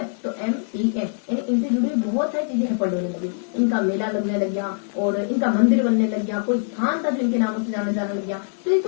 तो MTM यानी इनसे जुड़ी हुई बहुत सारी चीजें हेपड़ होने लगी। इनका मेला लगने लग गया और इनका मंदिर बनने लग गया, कोई स्थान था जो इनके नामों से जाने लग गया। तो ये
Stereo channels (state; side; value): silent; right; 58 dB below the other